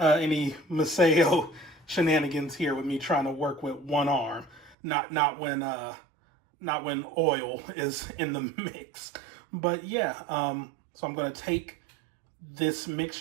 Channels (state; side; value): drops out; left; at 4.8 s